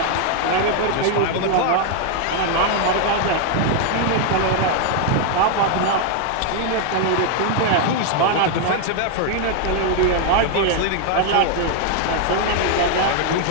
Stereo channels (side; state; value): both; different; correlation 0.00